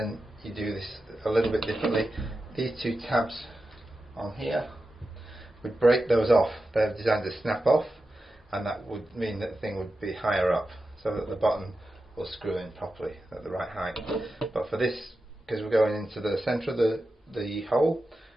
you do this a little bit differently. These two tabs on here, we'd break those off. They're designed to snap off, and that would mean that the thing would be higher up, so that the button will screw in properly at the right height. But for this, because we're going into the centre of the hole,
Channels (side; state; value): both; normal; correlation 0.91